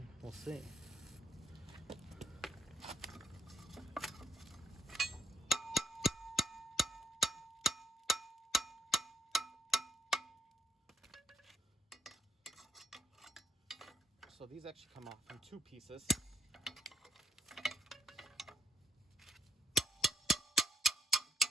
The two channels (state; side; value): normal; both; correlation 0.71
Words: we'll see. So these actually come off in 2 pieces.